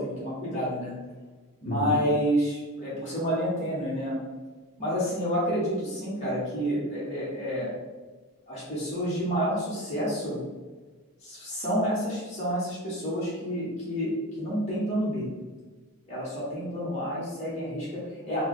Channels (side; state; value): both; normal; correlation 0.26